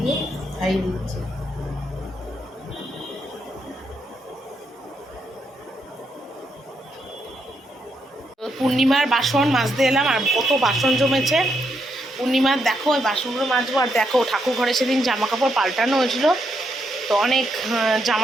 খাইয়ে দিচ্ছি। পূর্ণিমার বাসন মাজতে এলাম, আর কত বাসন জমেছে। পূর্ণিমার দেখো ওই বাসনগুলো মাজবো, আর দেখো ঠাকুর ঘরে সেদিন জামা কাপড় পাল্টানো হয়েছিল, তো অনেক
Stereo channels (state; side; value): normal; both; correlation 0.79